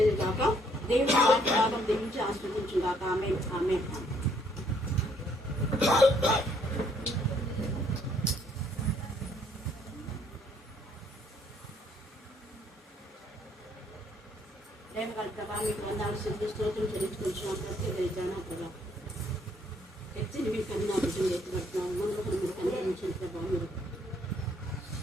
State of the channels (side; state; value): both; normal; correlation 0.66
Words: కాక. దేవుడి వాక్య భాగం దీవించి ఆస్వాదించుగాక. ఆమేన్, ఆమేన్. ప్రేమ కలుగుతావా? మీకు వందాలు సిద్ధి స్తోత్రం చెల్లించుకుంటున్నాం. ప్రత్యేకరిద్దానా ప్రభా, ఎత్తిని మీకు కన్నా బిడ్డలు ఎత్తుపడుతున్నాం. మనకు మీరు కనిపించిన ప్రభావ మీరు